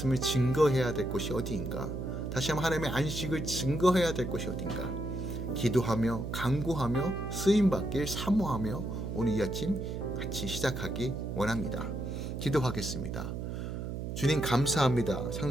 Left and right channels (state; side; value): noise; right; hum, 5 dB below the sound